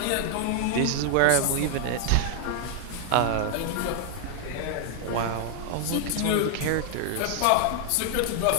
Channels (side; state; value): both; different; correlation 0.00